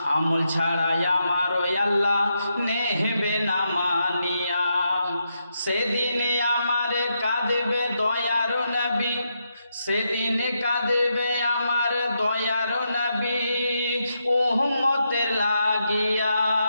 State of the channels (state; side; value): inverted; both; correlation -0.82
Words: আমল ছাড়াই আমার আল্লাহ নেবে না মানিয়া। সেদিন আমার কাঁদবে দয়ার নবী, সেদিন কাঁদবে আমার দয়ার নবী, উম্মতের লাগিয়া,